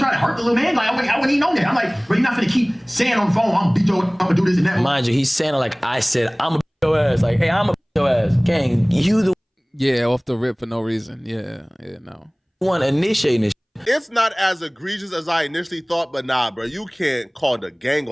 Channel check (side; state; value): both; identical; correlation 1.00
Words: try to hurt the little man. Like, I wouldn't even know that. I'm like, bro, you're not gonna keep saying on the phone, I'm gonna do this and that. Mind you, he's saying it like I said, I'm a beat your ass. Like, hey, I'm a beat your ass. Gang, you the Yeah, off the rip for no reason. Yeah, no. one initiating this. It's not as egregious as I initially thought, but nah, bro, you can't call the gang